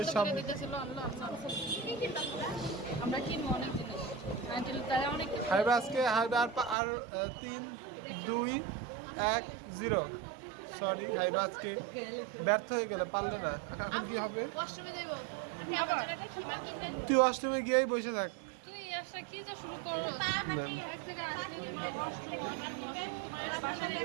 সব- করে দিতেছিল। আল্লাহ আল্লাহ। আমরা কিনবো অনেক জিনিস। আন্টি তারা অনেক কিছু। হাবিব আজকে হাবিব আর 3 2 1 0। সরি হাবিব আজকে ব্যর্থ হয়ে গেল, পারলো না। এখন কি হবে? ওয়াশরুমে যাইবো আমি আমার জায়গাটা খিমা কিনতে তুই অষ্টমে গিয়েই বসে থাক। তুই আসা কি যে শুরু করো? না। এক জায়গায় আসলে বাসা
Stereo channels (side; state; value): left; drops out; at 6.8 s